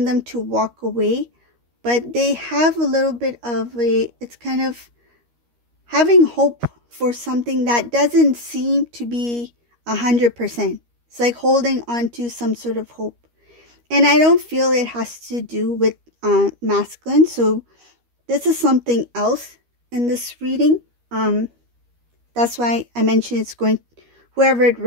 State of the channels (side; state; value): left; late; 13 ms